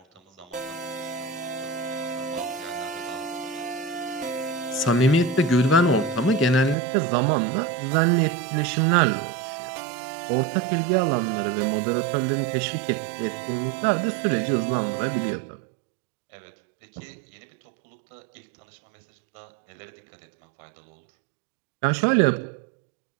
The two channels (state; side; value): drops out; left; at 6.8 s